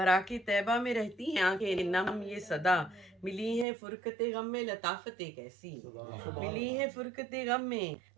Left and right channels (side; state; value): left; drops out; at 3.7 s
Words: طیبہ میں رہتی ہیں آنکھیں نم یہ صدا، ملی ہیں فرقت غم میں لطافتیں کیسی، ملی ہیں فرقت غم میں